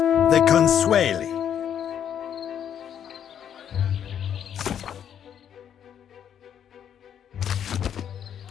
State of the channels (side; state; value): right; quieter; 9.1 dB